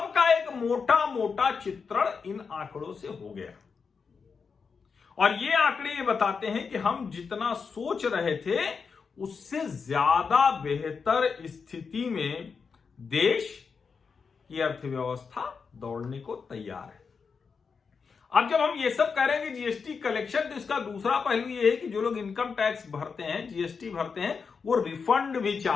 का एक मोटा मोटा चित्रण इन आंकड़ों से हो गया। और ये आंकड़े ये बताते हैं कि हम जितना सोच रहे थे उससे ज्यादा बेहतर स्थिति में देश की अर्थव्यवस्था दौड़ने को तैयार है। अब जब हम ये सब कह रहे हैं कि जीएसटी कलेक्शन, तो इसका दूसरा पहलू ये है कि जो लोग इनकम टैक्स भरते हैं, जीएसटी भरते हैं, वो रिफंड भी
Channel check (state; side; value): quieter; right; 5.5 dB